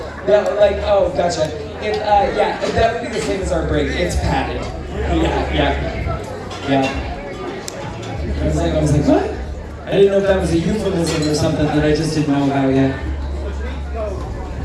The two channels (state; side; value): identical; both; correlation 1.00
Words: oh, gotcha. Yeah, that would be the same as our brig. It's padded. Yeah. I was like, what? I didn't know if that was a euphemism or something that I just didn't know about yet.